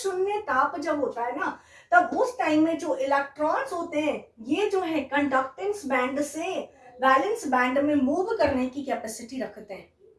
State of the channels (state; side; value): identical; both; correlation 1.00